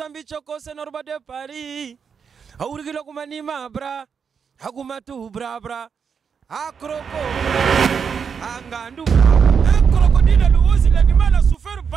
choko se Norba de Paris aurigilo kumanima bra hagumatu bra akroko angandu crocodile le osi l'animal a souffert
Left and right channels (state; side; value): quieter; left; 6.5 dB